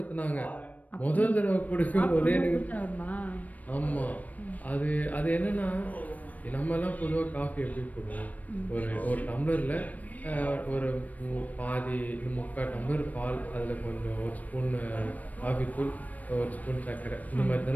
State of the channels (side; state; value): right; late; 0.074 ms